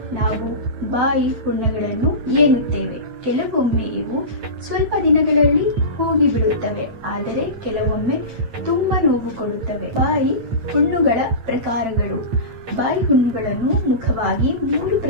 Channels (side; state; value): left; late; 8.9 ms